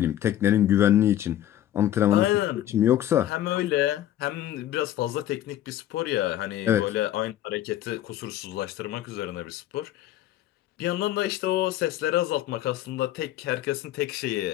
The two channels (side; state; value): right; quieter; 12.5 dB